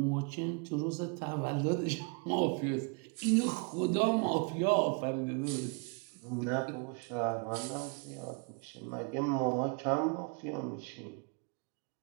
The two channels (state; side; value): quieter; left; 34.0 dB